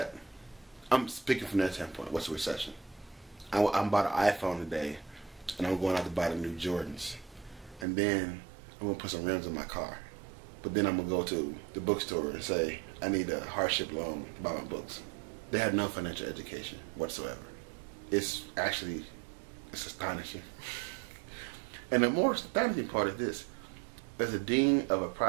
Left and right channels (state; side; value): drops out; left; at 7.9 s